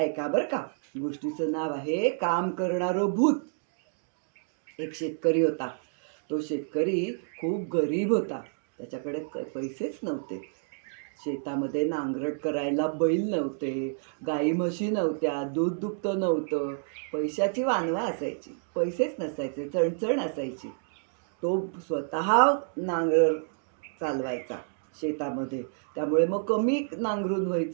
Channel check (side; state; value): left; silent; digital silence